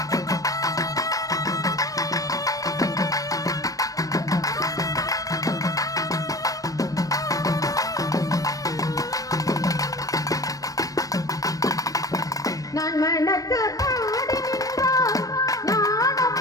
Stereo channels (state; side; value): late; right; 0.17 ms